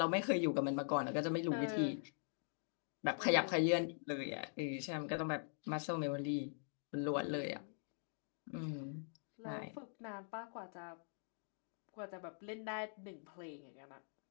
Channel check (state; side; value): silent; right; digital silence